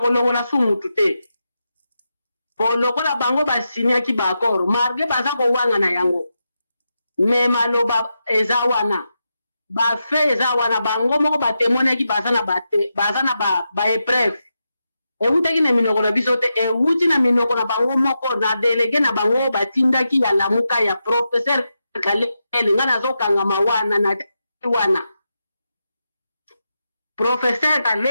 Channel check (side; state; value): both; inverted; correlation -0.88